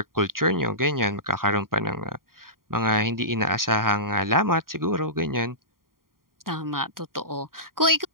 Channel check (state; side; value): late; left; 0.91 ms